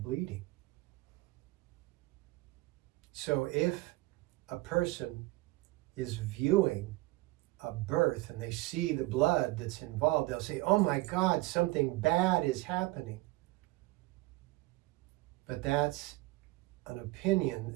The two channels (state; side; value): quieter; left; 20.5 dB